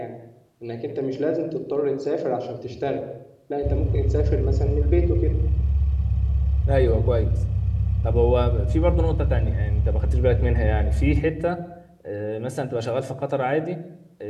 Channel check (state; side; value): identical; both; correlation 1.00